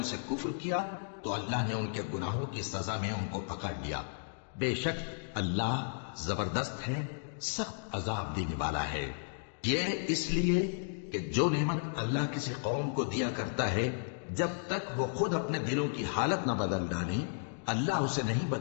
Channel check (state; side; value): silent; right; digital silence